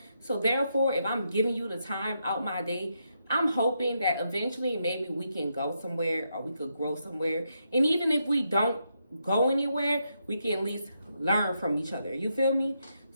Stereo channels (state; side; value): inverted; both; correlation -0.81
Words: So therefore, if I'm giving you the time out my day, I'm hoping that eventually maybe we can go somewhere or we could grow somewhere. And even if we don't go anywhere, we can at least learn from each other. You feel me?